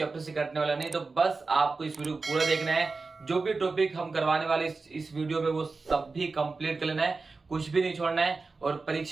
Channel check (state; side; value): quieter; left; 4.0 dB